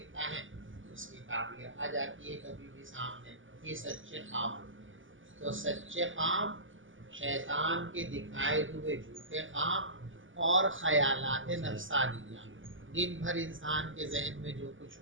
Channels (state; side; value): late; left; 0.57 ms